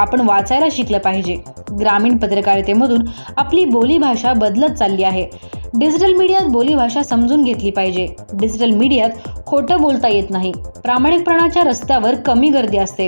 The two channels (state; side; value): inverted; both; correlation -1.00